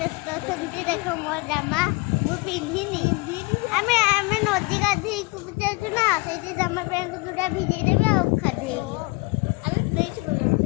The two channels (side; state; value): right; quieter; 26.8 dB